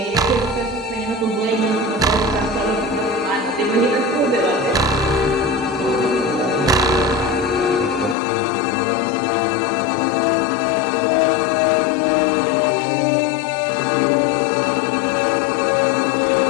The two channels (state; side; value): drops out; right; at 8.2 s